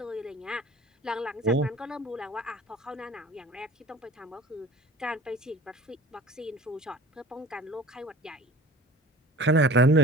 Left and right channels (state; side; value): normal; both; correlation 0.43